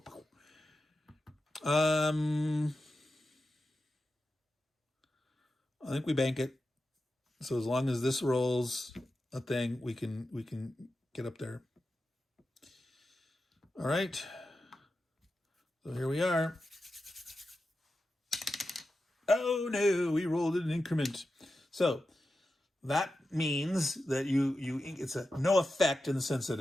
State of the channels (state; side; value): normal; both; correlation 0.91